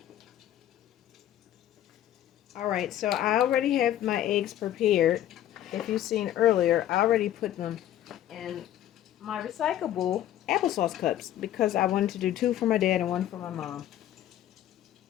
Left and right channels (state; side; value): quieter; right; 12.2 dB